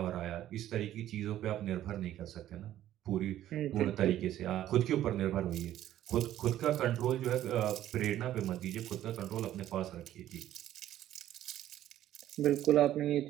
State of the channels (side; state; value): left; quieter; 12.6 dB